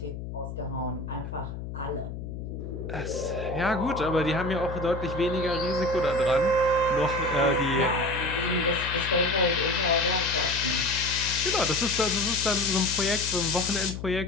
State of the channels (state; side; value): noise; left; hum, 8 dB below the sound